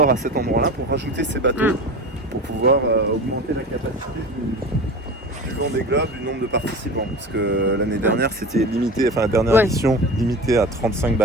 à cet endroit-là pour rajouter ces bateaux, pour pouvoir augmenter la capacité du Vendée Globe, du nombre de participants. Parce que l'année dernière, c'était limité, enfin la dernière édition, limitée à 35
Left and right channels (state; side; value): normal; both; correlation 0.32